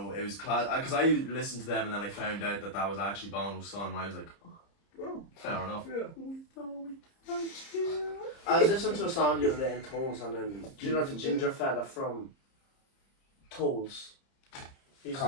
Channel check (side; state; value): right; late; 30 ms